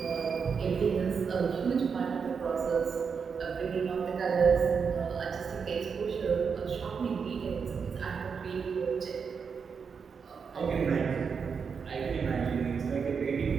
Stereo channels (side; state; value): left; quieter; 6.0 dB